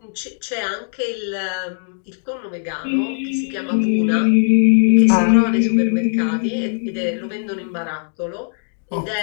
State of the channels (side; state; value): right; silent; digital silence